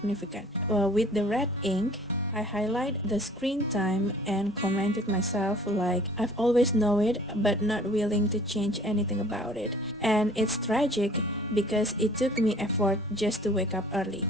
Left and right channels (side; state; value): both; normal; correlation 0.52